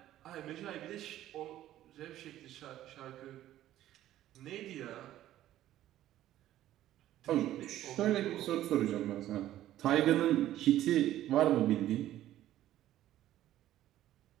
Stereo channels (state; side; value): quieter; left; 13.3 dB